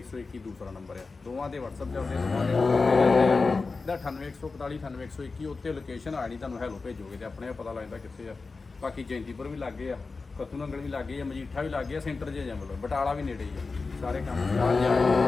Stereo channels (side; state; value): right; quieter; 4.1 dB